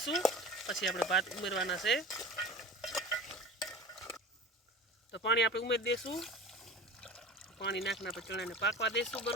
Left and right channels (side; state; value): both; normal; correlation 0.34